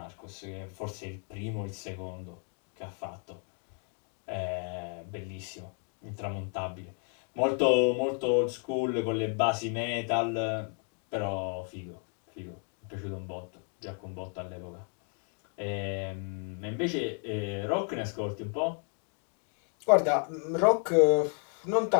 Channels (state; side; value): quieter; right; 39.7 dB